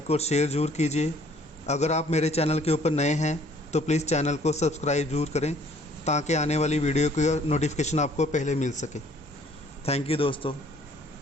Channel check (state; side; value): normal; both; correlation 0.58